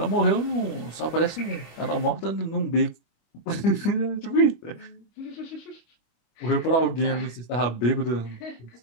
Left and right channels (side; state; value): right; late; 25 ms